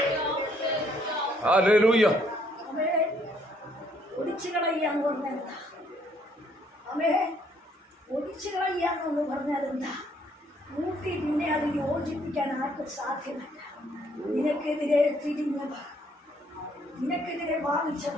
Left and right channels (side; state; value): both; normal; correlation 0.67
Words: ഹല്ലേലൂയ. ഒടിച്ചു കളയാന്ന് പറഞ്ഞാൽ എന്താ? ഒടിച്ചു കളയാന്ന് പറഞ്ഞാൽ എന്താ? കൂട്ടി പിന്നെ അത് യോജിപ്പിക്കാൻ ആർക്കും സാധ്യമല്ല. നിനക്കെതിരെ തിരിഞ്ഞവർ, നിനക്കെതിരെ